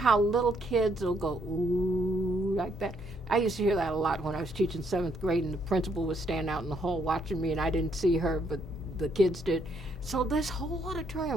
little kids will go, ooh, like that? I used to hear that a lot when I was teaching 7th grade, and the principal would stand out in the hall watching me, and I didn't see her, but the kids did. So this whole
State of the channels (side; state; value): both; normal; correlation 0.72